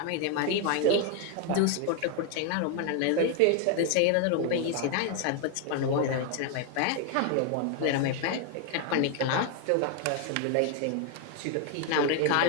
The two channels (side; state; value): both; different; correlation 0.01